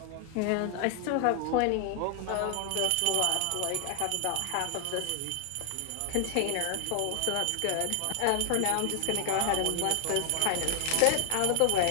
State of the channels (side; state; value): both; different; correlation 0.00